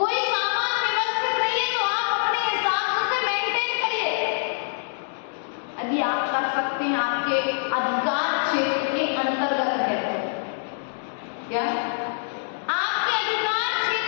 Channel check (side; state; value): right; silent; digital silence